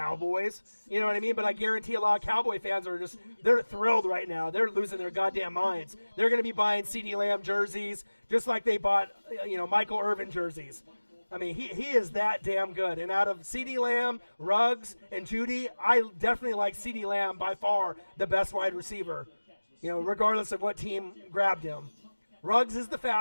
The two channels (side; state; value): both; inverted; correlation -1.00